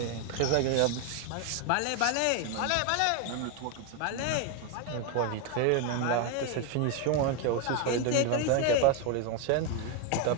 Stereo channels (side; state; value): both; different; correlation 0.01